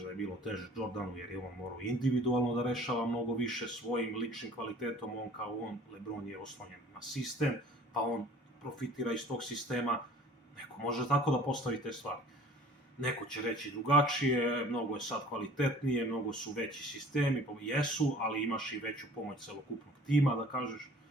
da je bilo teže Jordanu jer je on morao individualno da rešava mnogo više svojim ličnim kvalitetom, LeBron je oslonjen na sistem, pa on profitira iz tog sistema, neko može tako da postavi te stvari. Neko će reći drugačije, mnogo je sad kvalitetnije, mnogo su veći sistemi, jesu, ali imaš i veću pomoć celokupnog tima, da kažeš,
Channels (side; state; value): both; normal; correlation 0.49